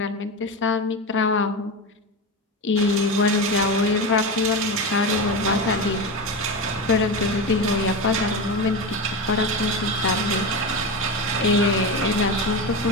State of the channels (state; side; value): normal; both; correlation 0.20